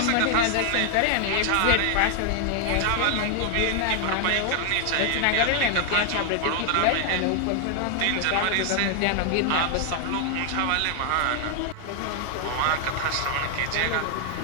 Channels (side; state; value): both; different; correlation 0.00